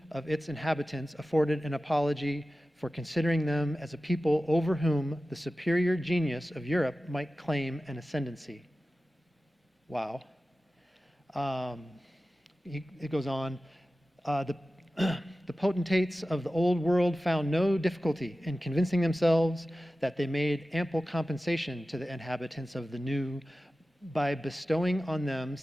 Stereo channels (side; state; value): both; normal; correlation 0.95